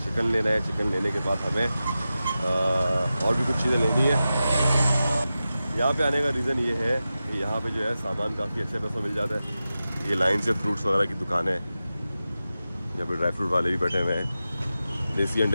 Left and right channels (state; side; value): inverted; both; correlation -0.93